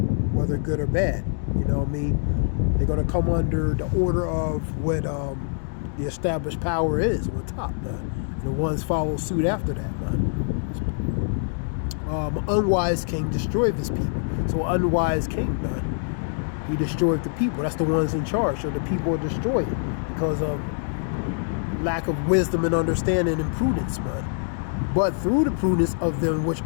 whether good or bad. You know what I mean? They're going to come under the order of what the established power is on top, man. And the ones follow suit after that, man. An unwise king destroyed his people. So an unwise king, man, he destroyed the people. That's the ones in charge. So the people are destroyed because of lack of wisdom and understanding and prudence, man. But through the prudence of them which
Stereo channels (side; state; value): right; silent; digital silence